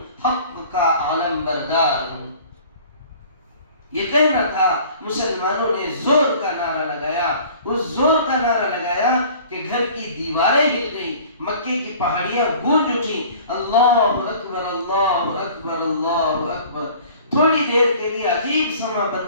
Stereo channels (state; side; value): inverted; both; correlation -0.48